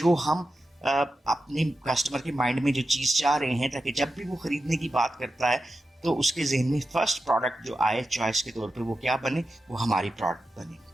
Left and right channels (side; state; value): both; normal; correlation 0.91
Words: हम अपने कस्टमर के माइंड में जो चीज़ चाह रहे हैं ताकि जब भी वो ख़रीदने की बात करता है तो उसके जहन में फर्स्ट प्रोडक्ट जो आए चॉइस के तौर पे वो क्या बने, वो हमारी प्रोडक्ट बने।